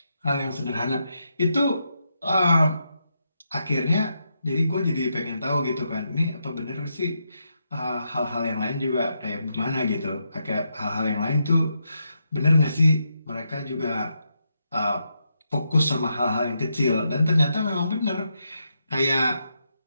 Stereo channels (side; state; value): both; inverted; correlation -0.82